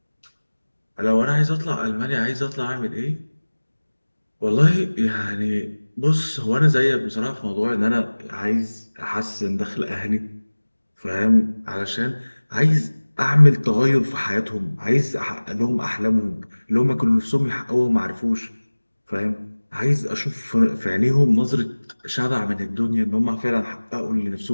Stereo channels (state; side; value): inverted; both; correlation -1.00